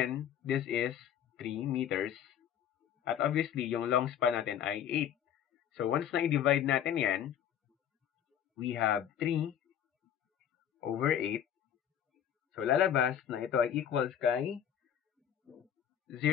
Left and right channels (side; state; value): right; quieter; 9.5 dB